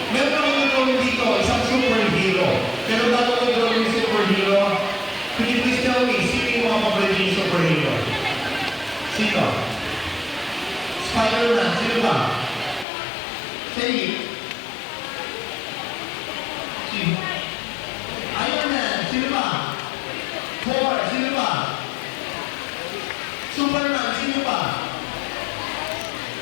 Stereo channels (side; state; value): right; drops out; at 12.9 s